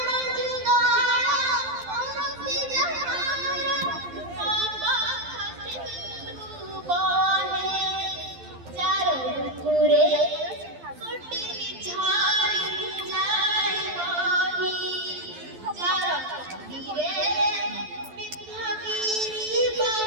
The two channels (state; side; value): late; left; 11 ms